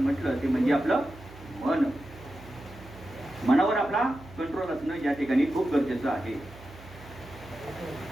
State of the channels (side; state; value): right; noise; hum, 19 dB below the sound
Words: ते म्हणजे आपलं मन. मनावर आपला कंट्रोल असणं या ठिकाणी खूप गरजेचं आहे.